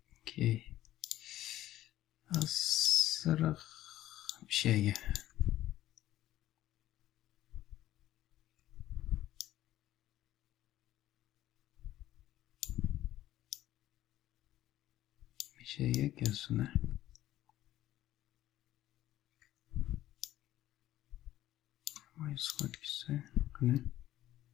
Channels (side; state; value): right; quieter; 14.0 dB